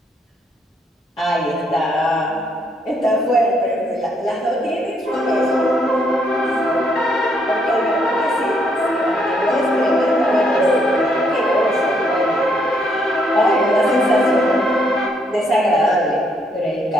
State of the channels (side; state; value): both; normal; correlation 0.72